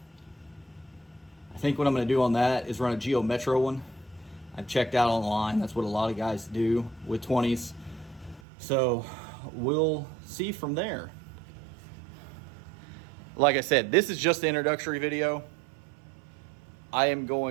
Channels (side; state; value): left; drops out; at 8.4 s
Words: I think what I'm going to do on that is run a Geo Metro one. I've checked out online. That's what a lot of guys do with 20s. So we'll see from there. Like I said, this is just the introductory video. I am